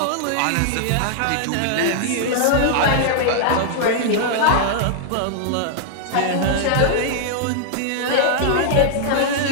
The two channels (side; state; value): both; different; correlation -0.01